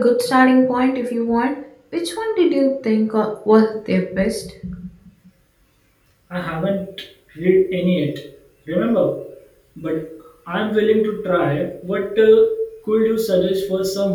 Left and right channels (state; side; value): identical; both; correlation 1.00